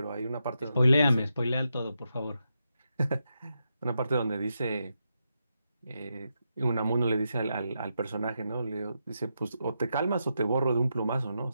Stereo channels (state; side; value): inverted; both; correlation -0.85